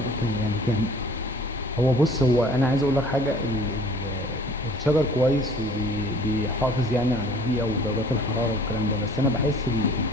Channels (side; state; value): both; normal; correlation 0.51